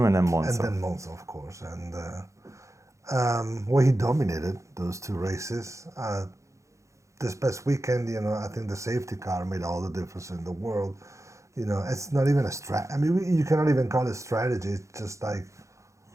and then Monza. And then Monza, of course. And well, he dominated those two races. This past weekend, I think the safety car made all the difference in the world. It's not even a I mean, you cannot even call it strategy. It's just like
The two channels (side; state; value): left; late; 0.15 ms